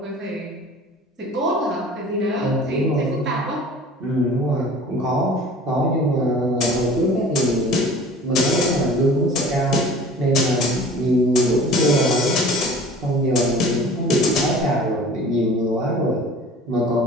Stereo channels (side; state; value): both; normal; correlation 0.44